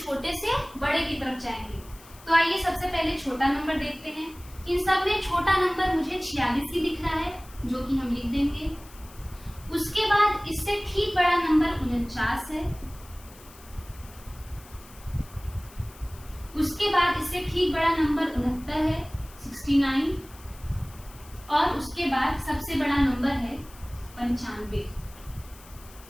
से बड़े की तरफ जाएंगे। तो आइए सबसे पहले छोटा नंबर देखते हैं। इन सब में छोटा नंबर मुझे 46 ही दिख रहा है, जो कि हम लिख देंगे। उसके बाद इससे ठीक बड़ा नंबर 49 है। उसके बाद इससे ठीक बड़ा नंबर 69 है, 69। और उसके बाद सबसे बड़ा नंबर है 95।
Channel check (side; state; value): left; noise; hiss, 22 dB below the sound